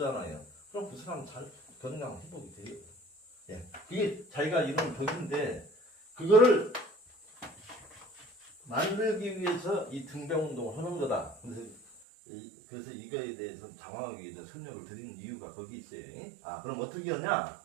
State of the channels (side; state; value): left; drops out; at 12.0 s